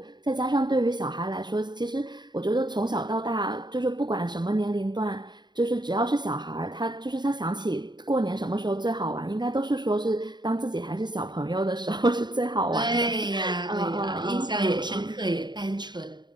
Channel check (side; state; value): left; late; 0.21 ms